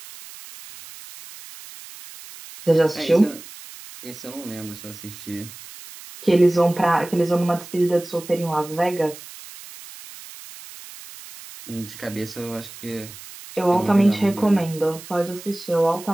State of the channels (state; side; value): noise; right; hiss, 16 dB below the sound